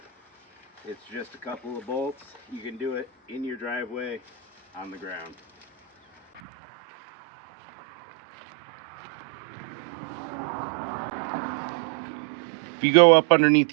It's just a couple of bolts. You can do it in your driveway, on the ground. If you go up underneath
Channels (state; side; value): drops out; left; at 6.4 s